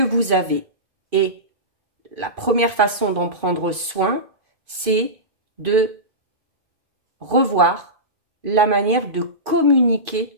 avez. Et la première façon d'en prendre soin, c'est de revoir la manière de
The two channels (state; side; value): late; left; 2.4 ms